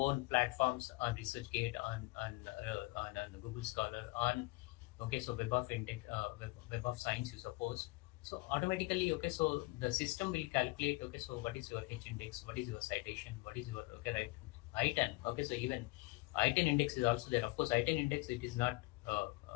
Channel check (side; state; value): right; quieter; 23.2 dB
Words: platforms on ResearchGate, on Google Scholar, on, okay, so Web of Index, Web of Science, you suppose. So automatically, okay, so the system will calculate, okay, so what is your H index, what is your citation, what is your, okay, right, I10. Okay, so even I10 index is also there. Of course, I10 index, it is not